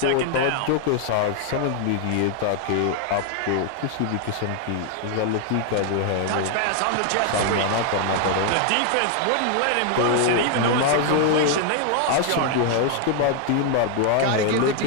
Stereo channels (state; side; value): different; both; correlation 0.00